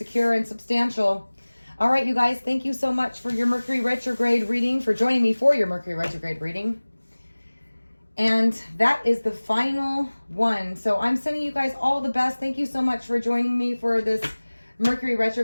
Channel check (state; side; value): inverted; both; correlation -1.00